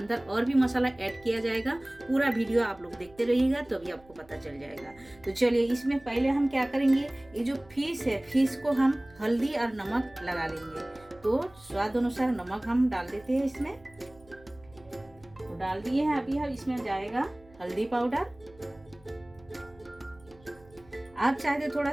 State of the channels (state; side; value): noise; right; hum, 26 dB below the sound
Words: और भी मसाला ऐड किया जाएगा। पूरा वीडियो आप लोग देखते रहिएगा तो भी आपको पता चल जाएगा। तो चलिए इसमें पहले हम क्या करेंगे, ये जो फिश है फिश को हम हल्दी और नमक लगा लेंगे। तो स्वाद अनुसार नमक हम डाल देते हैं इसमें। तो डाल दिए हैं। अभी हम इसमें जाएगा हल्दी पाउडर। आप चाहे तो थोड़ा